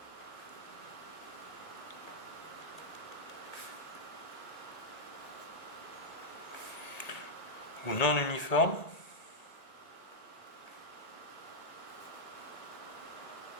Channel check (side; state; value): right; late; 1.8 ms